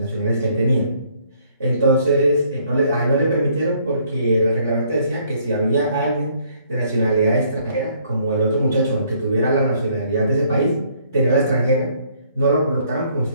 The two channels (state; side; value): inverted; both; correlation -0.64